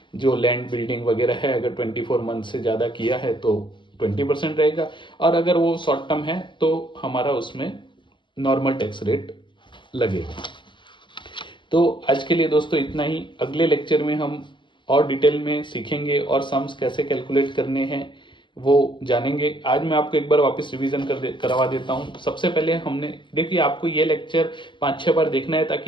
जो लैंड बिल्डिंग वगैरह है अगर 24 मंथ से ज़्यादा किया है तो 20% रहेगा, और अगर वो शॉर्ट टर्म है तो हमारा उसमें नॉर्मल टैक्स रेट लगेगा। तो आज के लिए दोस्तों इतना ही। अगले लेक्चर में हम और डिटेल में सीखेंगे और सम्स कैसे कैलकुलेट करने हैं वो जानेंगे। आज मैं आपको एक बार वापस रिवीजन करवा देता हूं। सबसे पहले हमने देखिए, आपको ये लेक्चर 5-6 बार देखना है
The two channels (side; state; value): right; late; 0.23 ms